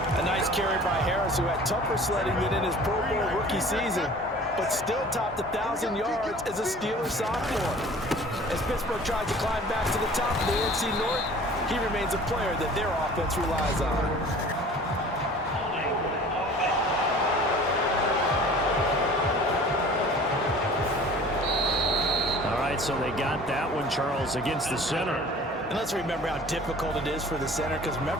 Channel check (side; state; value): both; normal; correlation 0.46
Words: A nice carry by Harris, who had tougher sledding than in his Pro Bowl rookie season, but still topped 1,000 yards as a Steelers sophomore. As Pittsburgh tries to climb back to the top of the NFC North, he remains a player that their offense relies on. All right, so they got that one, Charles, against the center. And let's remember how difficult it is for the center, because